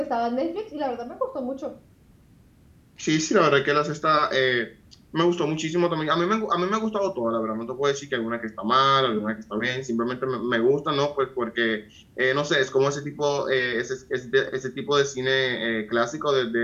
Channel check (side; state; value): both; identical; correlation 1.00